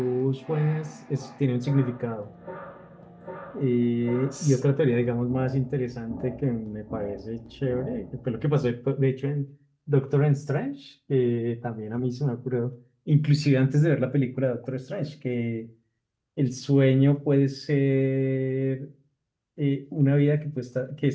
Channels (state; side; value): identical; both; correlation 1.00